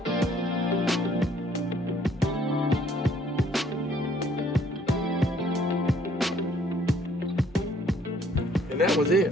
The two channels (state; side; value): normal; both; correlation 0.62